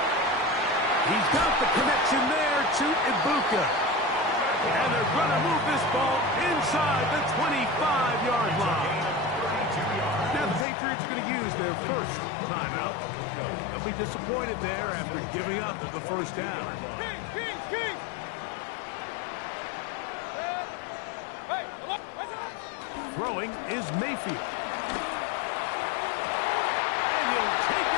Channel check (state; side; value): drops out; right; at 10.7 s